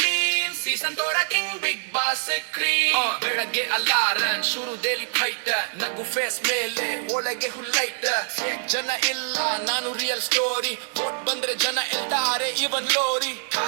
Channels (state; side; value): silent; left; 62 dB below the other